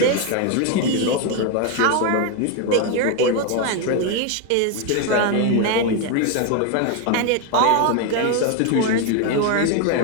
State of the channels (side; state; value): both; different; correlation 0.01